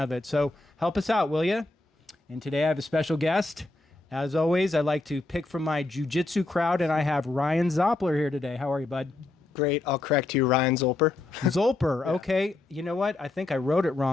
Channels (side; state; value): right; quieter; 3.1 dB